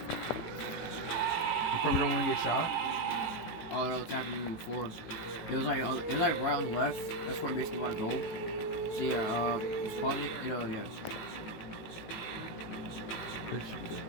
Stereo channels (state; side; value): late; right; 18 ms